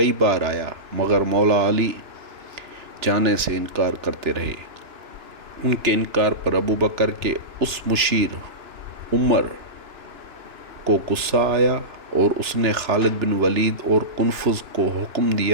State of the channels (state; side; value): late; left; 2.9 ms